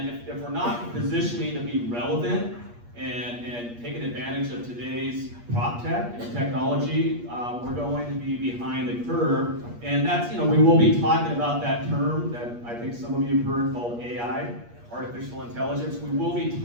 if we're not positioning to be relevant and taking advantage of today's prop tech and technology, we're going to be behind the curve. And that's, we will be talking about that term that I think some of you have heard called AI, artificial intelligence. We will be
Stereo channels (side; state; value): left; late; 8.4 ms